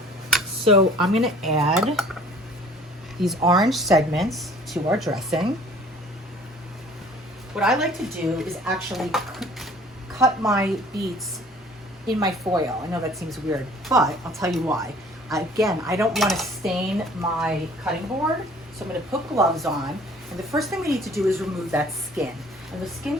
So I'm going to add these orange segments to our dressing. What I like to do is actually cut my beets in my foil. I know that seems weird, but I'll tell you why. Again, I don't want to stain my cutting board, so I'm going to put gloves on. And the first thing we need to do is remove that skin. And the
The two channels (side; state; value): both; normal; correlation 0.52